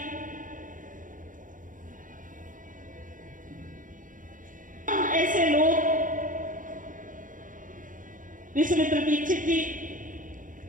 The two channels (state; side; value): late; left; 0.38 ms